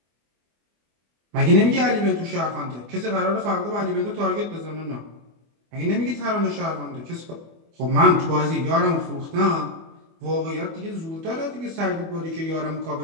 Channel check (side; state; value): left; late; 24 ms